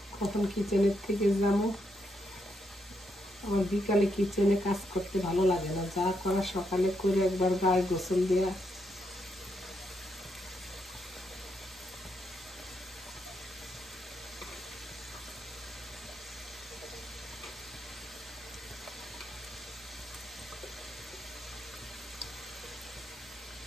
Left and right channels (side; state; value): both; normal; correlation 0.80